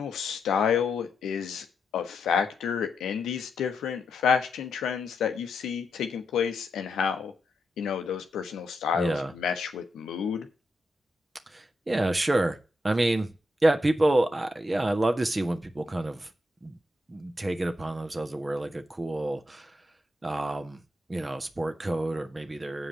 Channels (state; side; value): normal; both; correlation 0.83